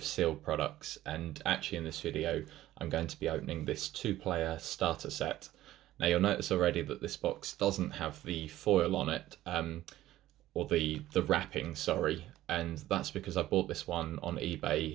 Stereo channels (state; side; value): quieter; left; 14.7 dB